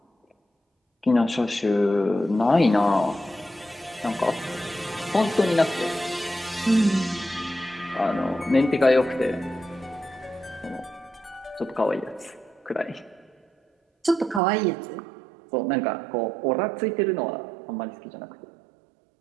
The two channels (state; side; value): drops out; left; at 14.4 s